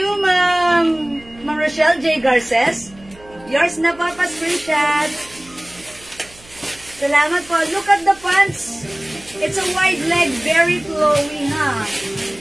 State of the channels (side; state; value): right; noise; hum, 24 dB below the sound